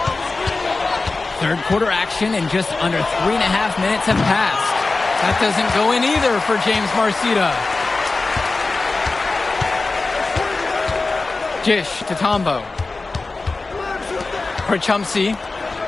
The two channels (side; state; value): right; quieter; 3.6 dB